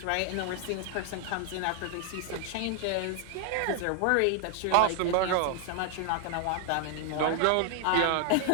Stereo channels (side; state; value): both; different; correlation 0.00